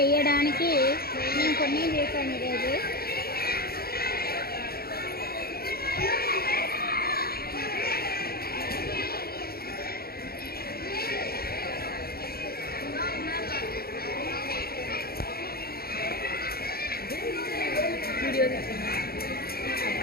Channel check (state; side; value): late; right; 0.44 ms